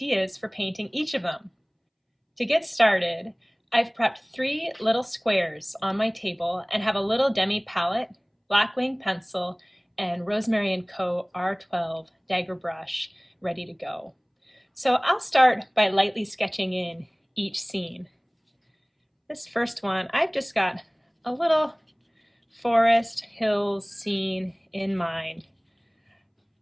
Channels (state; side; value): identical; both; correlation 1.00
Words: for painting each of them. To get started, I've prepped 3 little squares on my table and have a little demi palette, Blackwing pencil, and Rosemary & Co. R12 dagger brush ready to go. So I'll start by lightly sketching in each scene. This first one, I've just got a little forest hills scene in mind.